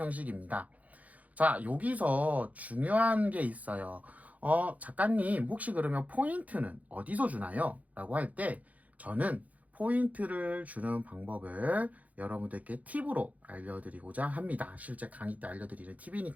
자, 여기서 중요한 게 있어요. 작가님, 혹시 그러면 포인트는 어디서 주나요? 라고 할 때, 저는 포인트를 주는 방법을 여러분들께 팁으로 알려드리고자 합니다. 실제 강의 때 알려드리는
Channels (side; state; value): left; late; 0.073 ms